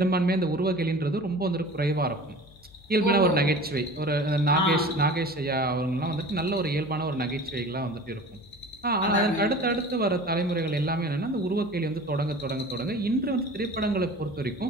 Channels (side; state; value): left; noise; hum, 25 dB below the sound